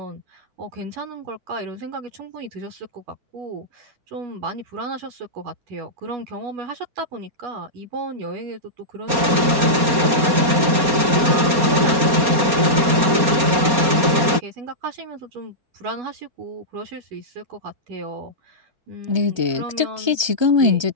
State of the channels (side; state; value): left; late; 4.2 ms